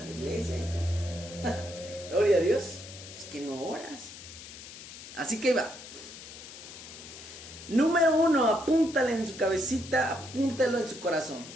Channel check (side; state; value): left; noise; hiss, 14 dB below the sound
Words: la iglesia, hijo. Gloria a Dios. Es que no oras. Así que va. Número 1, apúntale en su cabecita, apúntalo en su corazón.